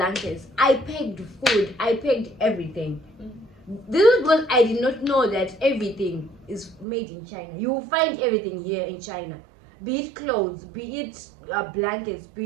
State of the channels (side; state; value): left; drops out; at 6.9 s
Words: I packed food. I packed everything. This is because I did not know that everything is made in China. You will find everything here in China. Be it clothes, be it blankets,